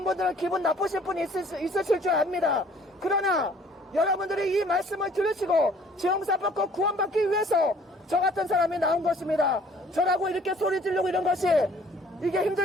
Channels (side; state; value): both; normal; correlation 0.56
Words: 분들은 기분 나쁘실 분이 있으실 줄 압니다. 그러나 여러분들이 이 말씀을 들으시고 죄 용서 받고 구원받기 위해서 저 같은 사람이 나온 것입니다. 저라고 이렇게 소리 지르고 이런 것이 이게